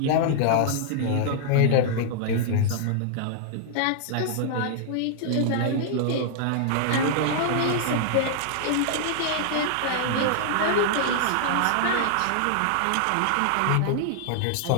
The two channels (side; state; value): both; different; correlation -0.01